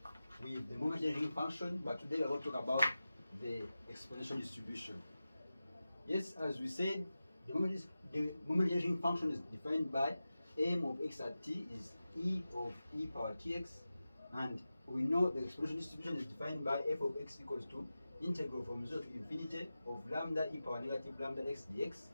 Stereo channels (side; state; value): both; inverted; correlation -0.94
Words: with the moment generating function, but today we are going to talk about the exponential distribution. Yes, as we said, the moment generating function is defined by m of x at t is e of e power tx, and we know the exponential distribution is defined by f of x equals to integral from 0 to infinity of lambda e power negative lambda x dx.